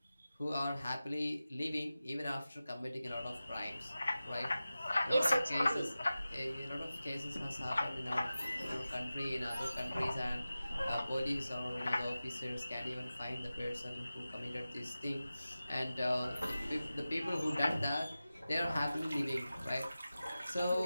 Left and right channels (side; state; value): both; inverted; correlation -0.95